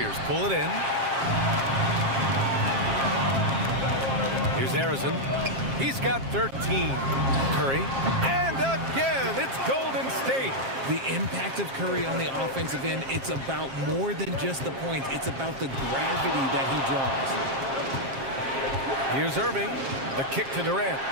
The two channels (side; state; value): left; late; 7.5 ms